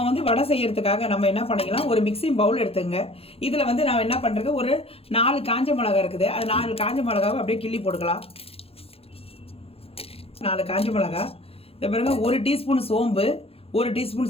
வந்து வடை செய்யறதுக்காக நம்ம என்ன பண்ணிக்கலாம், ஒரு மிக்சிங் பவுல் எடுத்துங்க. இதில் வந்து நான் என்ன பண்ணுறது, ஒரு 4 காஞ்ச மிளகா இருக்குது, அது 4 காஞ்ச மிளகாவை அப்படியே கிள்ளி போட்டுக்கலாம். 4 காஞ்ச மிளகா, இந்த பாருங்க 1 டீஸ்பூன் சோம்பு, 1 டீஸ்பூன்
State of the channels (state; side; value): late; right; 0.28 ms